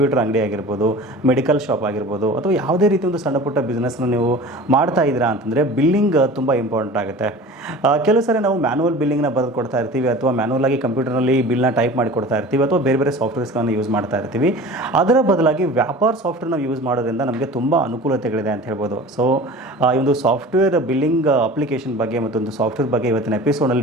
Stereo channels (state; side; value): normal; both; correlation 0.39